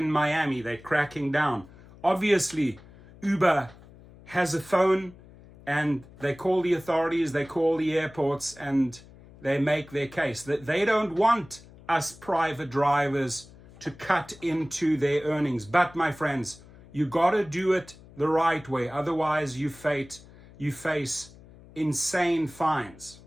Miami, they're cracking down. Obviously, Uber has a phone and they call the authorities, they call the airports, and they make their case. That they don't want us private drivers to cut into their earnings. But my friends, you gotta do it the right way. Otherwise, you face insane fines.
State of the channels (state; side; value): noise; left; hum, 22 dB below the sound